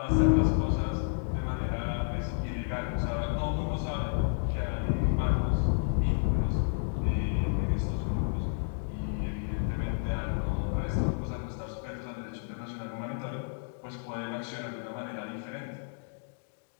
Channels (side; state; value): right; silent; digital silence